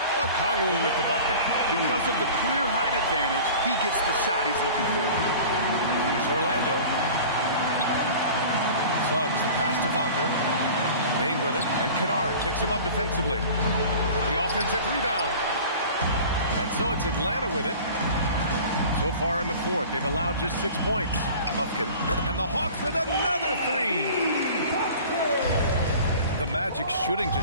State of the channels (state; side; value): inverted; both; correlation -0.41